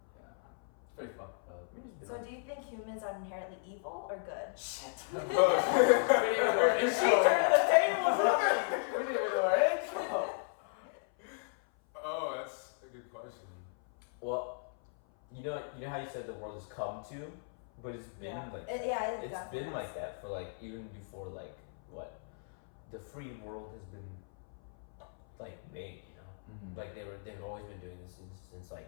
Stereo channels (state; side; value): silent; right; 54 dB below the other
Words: Yeah. It's pretty fucked up. So do you think humans are inherently evil or good? Shit. Is she turning the tables on me? We didn't even do our intro. Oh, that's a good question. Well, you know how you said the world has come to, but it's been it's been like that for like even before like what the free world has been like made, you know. Like they've always been doing this since